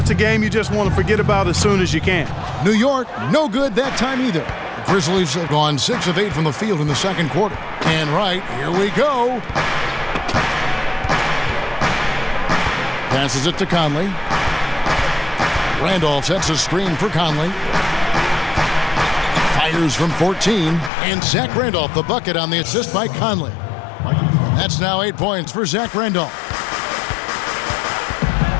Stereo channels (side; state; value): right; drops out; at 20.9 s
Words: a game you just want to forget about as soon as you can. New York, no good that time either. The Grizzlies have gone 6 of 8 from the field in the second quarter. And right, here we go. Passes it to Conley. Randolph sets a screen for Conley. Fires from 14. And Zach Randolph, the bucket on the assist by Conley. That's now 8 points for Zach Randolph.